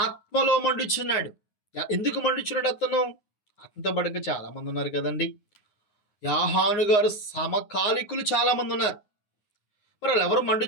మండుచున్నాడు. ఎందుకు మండుచున్నాడు అతను? అతనితో పాటుగా చాలా మంది ఉన్నారు కదండి. యోహాను గారు సమకాలికులు చాలా మంది ఉన్నారు. మరి వాళ్ళెవరు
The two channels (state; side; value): late; right; 9.6 ms